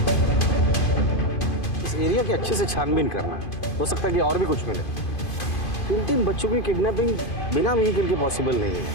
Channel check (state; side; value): late; right; 2.5 ms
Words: एरिया की अच्छे से छानबीन करना है। हो सकता है कि और भी कुछ मिले। 3 बच्चों की किडनैपिंग बिना व्हीकल के पॉसिबल नहीं है।